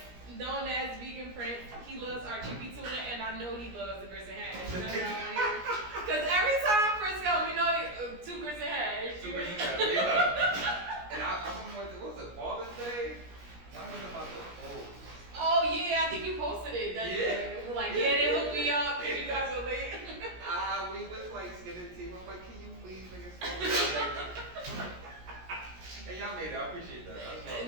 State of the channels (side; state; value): left; late; 17 ms